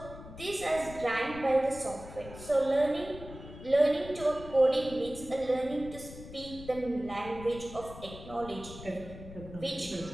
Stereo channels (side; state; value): left; noise; rumble, 14 dB below the sound